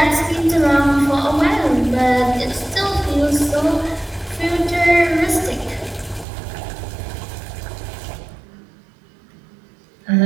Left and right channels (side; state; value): left; drops out; at 6.2 s